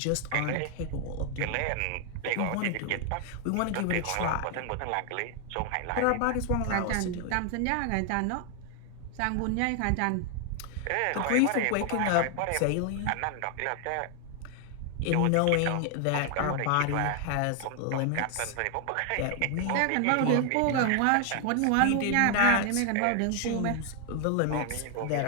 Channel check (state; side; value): different; both; correlation 0.00